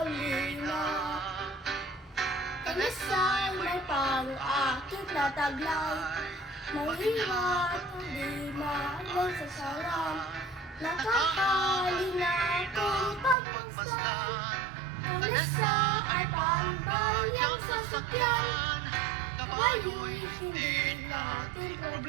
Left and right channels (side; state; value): left; drops out; at 13.4 s